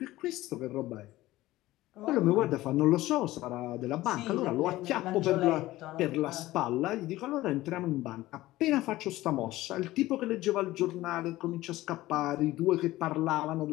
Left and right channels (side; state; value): right; quieter; 17.0 dB